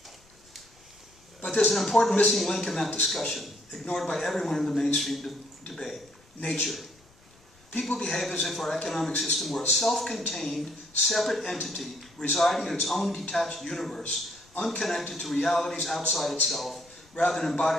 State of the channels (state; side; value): noise; left; rumble, 29 dB below the sound